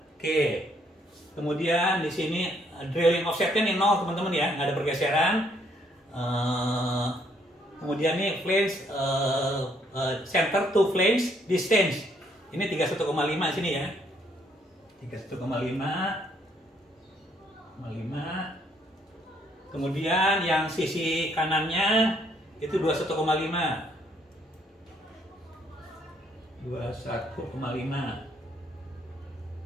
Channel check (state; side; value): normal; both; correlation 0.69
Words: Oke. Kemudian di sini drilling offsetnya nih 0 teman-teman ya, nggak ada pergeseran. Kemudian nih flange center to flange distance. Ini 31,5 sini ya. 31,5. Kemudian yang sisi kanannya itu 21,5. 21,5.